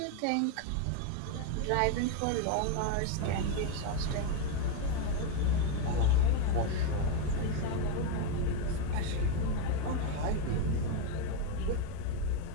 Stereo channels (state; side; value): different; both; correlation 0.02